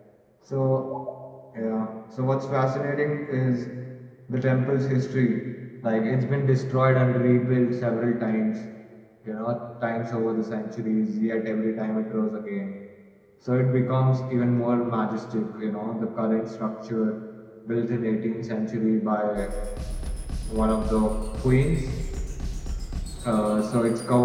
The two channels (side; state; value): both; identical; correlation 1.00